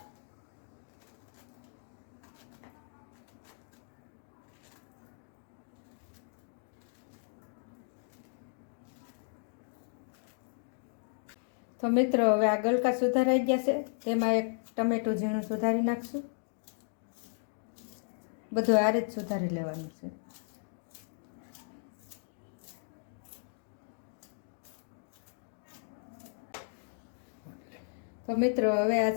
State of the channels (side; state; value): right; silent; digital silence